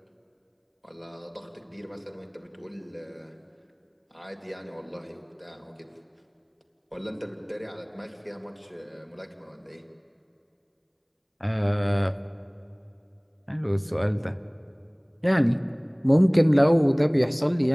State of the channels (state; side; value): identical; both; correlation 1.00